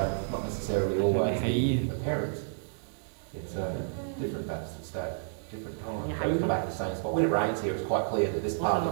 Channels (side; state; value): left; silent; 58 dB below the other